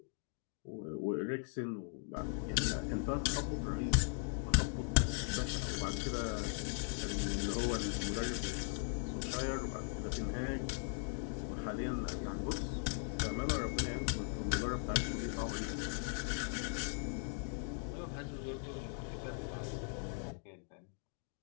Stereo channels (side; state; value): right; silent; 52 dB below the other